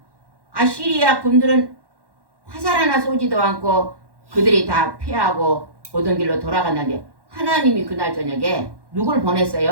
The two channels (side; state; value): left; late; 1.1 ms